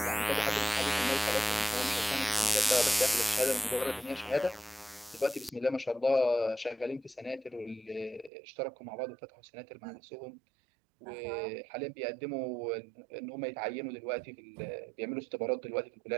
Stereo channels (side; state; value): left; drops out; at 8.3 s